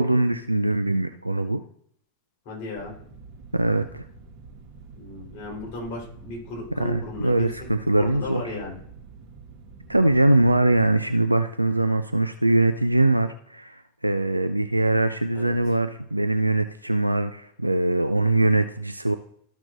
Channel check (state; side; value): inverted; both; correlation -0.91